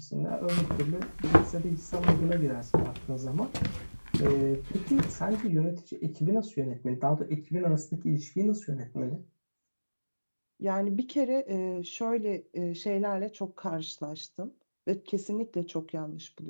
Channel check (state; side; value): inverted; both; correlation -1.00